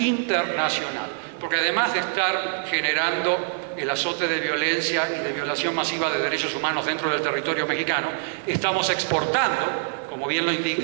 Porque además de estar generando el azote de violencia y de violación masiva de derechos humanos dentro del territorio mexicano, estamos exportando, como bien lo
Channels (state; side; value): silent; left; digital silence